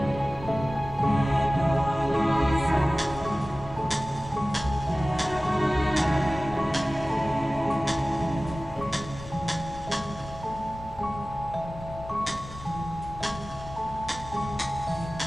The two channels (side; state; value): both; normal; correlation 0.97